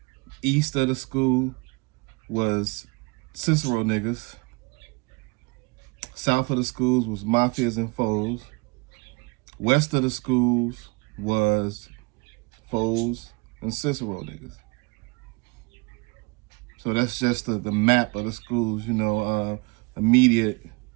east of the school was Cicero niggas. South of the schools was mafias and foes. West of the schools was foes and Cicero niggas. So that's just the map of the schools, immediate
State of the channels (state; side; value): quieter; left; 28.9 dB